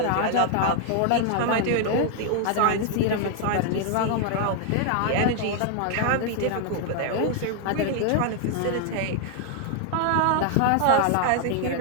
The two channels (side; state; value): both; different; correlation 0.00